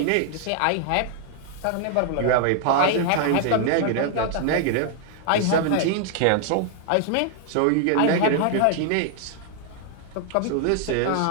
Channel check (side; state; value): both; different; correlation 0.00